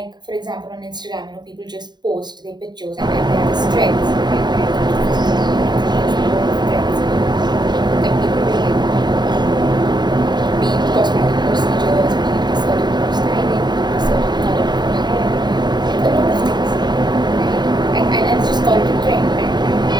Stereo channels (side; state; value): left; late; 0.21 ms